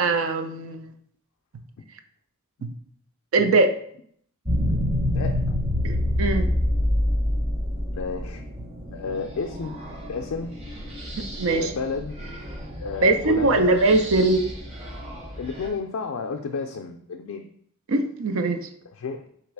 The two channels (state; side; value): normal; both; correlation 0.17